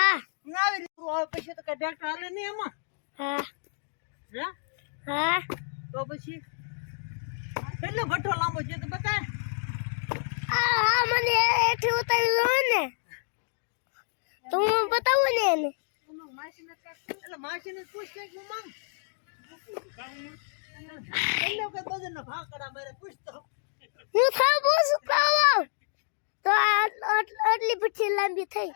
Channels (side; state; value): right; silent; digital silence